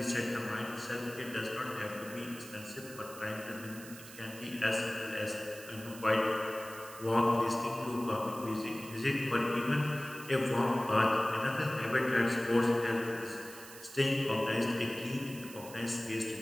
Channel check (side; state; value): right; noise; hiss, 15 dB below the sound